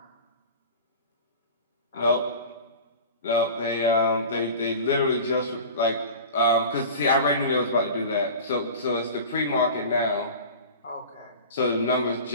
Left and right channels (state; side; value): inverted; both; correlation -0.36